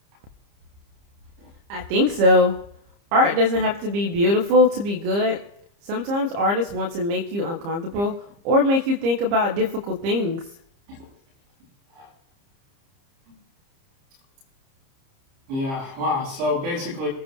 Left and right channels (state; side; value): late; left; 30 ms